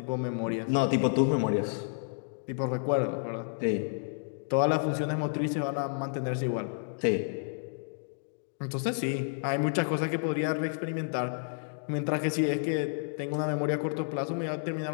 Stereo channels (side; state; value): right; silent; digital silence